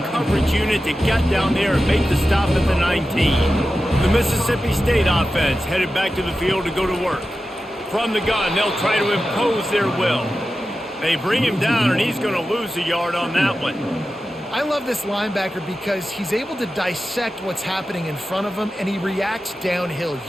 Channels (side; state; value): both; normal; correlation 0.93